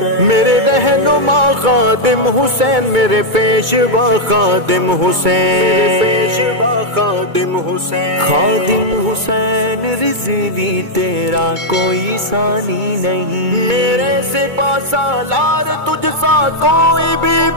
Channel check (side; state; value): left; late; 2.2 ms